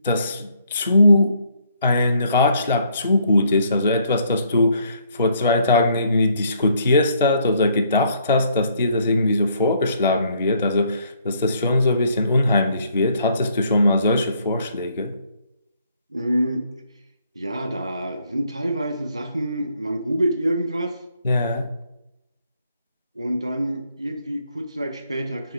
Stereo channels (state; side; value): inverted; both; correlation -0.67